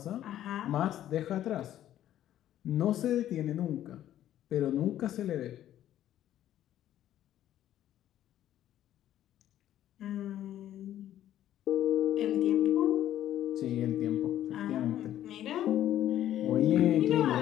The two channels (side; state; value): right; quieter; 12.1 dB